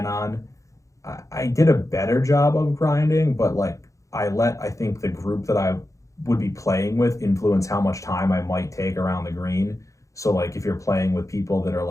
on. I did a better job of grinding, but like I think the group that I would be playing with influence how much time I might take around the green. So like if you're playing with people that are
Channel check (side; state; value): right; late; 0.15 ms